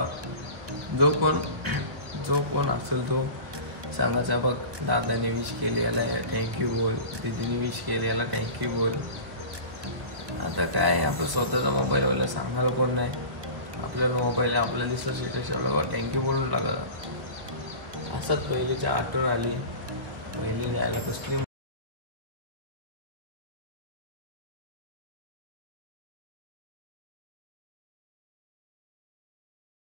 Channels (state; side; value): late; left; 1.2 ms